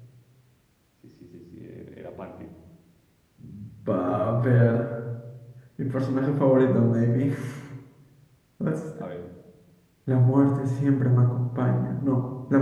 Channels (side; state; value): both; identical; correlation 1.00